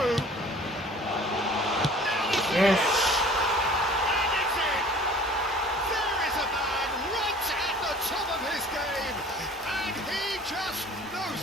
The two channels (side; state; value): both; normal; correlation 0.48